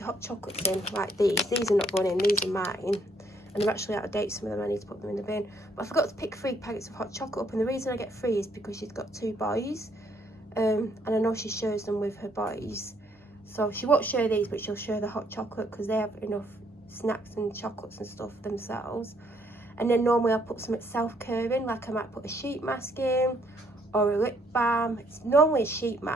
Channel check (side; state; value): both; normal; correlation 0.68